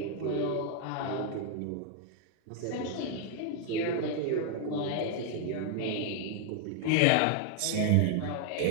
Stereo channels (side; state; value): both; different; correlation 0.00